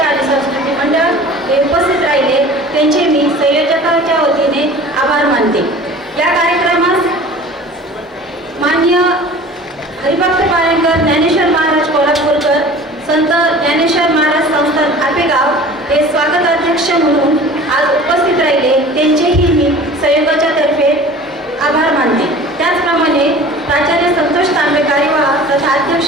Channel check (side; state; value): both; normal; correlation 0.43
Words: संस्कृती मंडळ हे उपस्थित राहिले. त्यांचे मी संयोजकांच्या वतीने आभार मानते. या कार्यक्रमास मान्य हरिभक्त पारणकर, ज्ञानेश्वर महाराज कोल्हापूरकर, संत ज्ञानेश्वर महाराज संस्थान आपेगाव हे स्वागत अध्यक्ष म्हणून आज उपस्थित राहिले. त्यांचेही मी संयोगाच्या तर्फे आभार मानते. त्याचप्रमाणे प्राचार्य संतोष तांबे कार्यवाह तथा